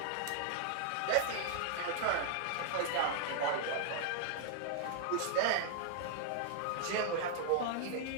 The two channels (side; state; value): both; different; correlation -0.01